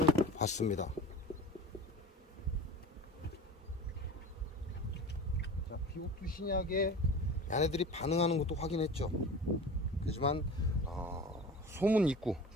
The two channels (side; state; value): both; normal; correlation 0.36